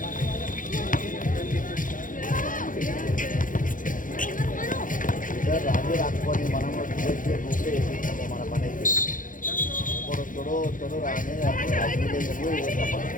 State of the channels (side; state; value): right; late; 0.39 ms